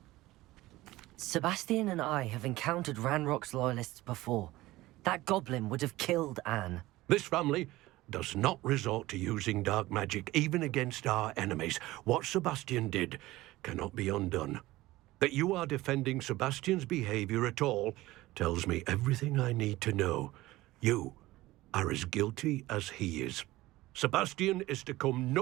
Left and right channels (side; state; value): left; quieter; 18.0 dB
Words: Sebastian and I have encountered Ranrock's loyalists before. That goblin would have killed Anne. This family does not resort to using dark magic even against our enemies. What Sebastian did cannot be undone. That you are defending Sebastian's behavior at all tells me everything I need to know. You are as guilty as he is. Sebastian is to come